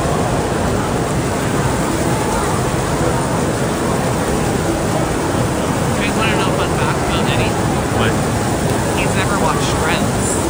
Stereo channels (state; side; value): identical; both; correlation 1.00